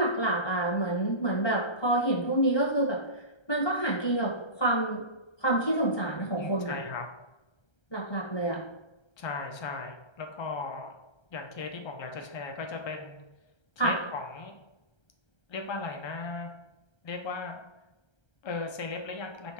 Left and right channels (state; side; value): late; right; 1.3 ms